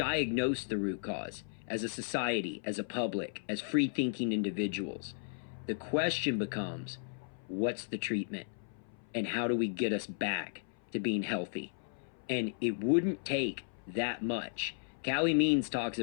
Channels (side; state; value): right; silent; 54 dB below the other